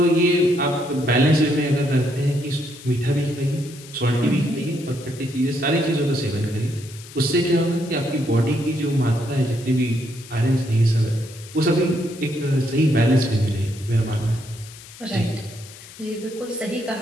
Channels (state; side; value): noise; left; hiss, 18 dB below the sound